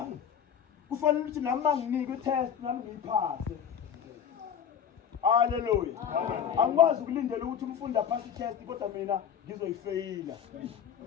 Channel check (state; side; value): quieter; right; 8.1 dB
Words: Kufanele ukuthi nami manginike i-test nami ngiyiphase. Haleluya. Angikwazi ukulindela ukuthi umfundi aphase i-test kodwa mina ngizoyifeyila.